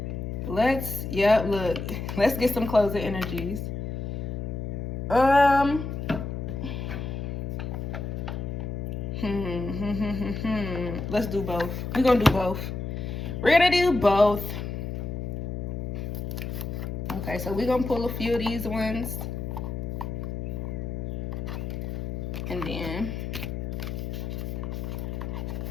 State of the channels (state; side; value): noise; left; hum, 4 dB below the sound